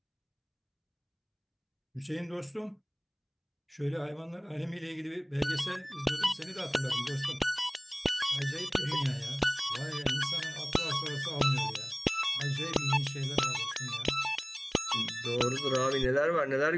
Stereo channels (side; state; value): both; identical; correlation 1.00